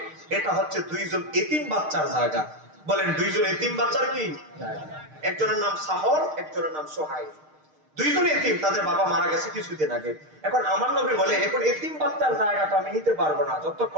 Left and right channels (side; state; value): left; late; 6.5 ms